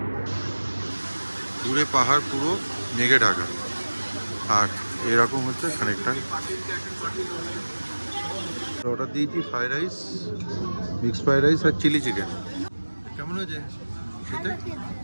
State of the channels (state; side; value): inverted; both; correlation -1.00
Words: দূরে পাহাড় পুরো মেঘে ঢাকা, আর এরকম হচ্ছে খানিকটা। অর্ডার দিয়েছি fried rice, mix fried rice আর চিলি চিকেন। কেমন হয়েছে খেতে?